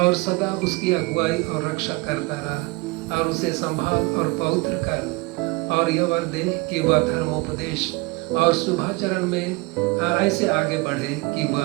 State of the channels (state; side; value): quieter; left; 24.7 dB